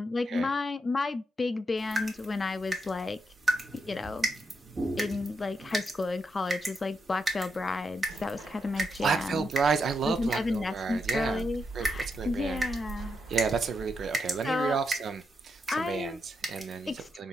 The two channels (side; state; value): both; normal; correlation 0.83